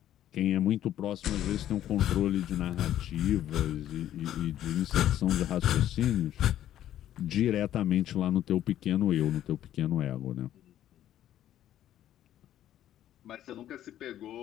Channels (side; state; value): right; quieter; 12.0 dB